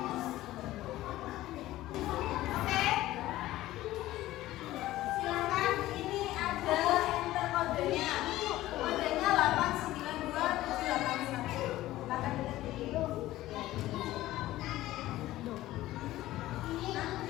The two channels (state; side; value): quieter; right; 15.8 dB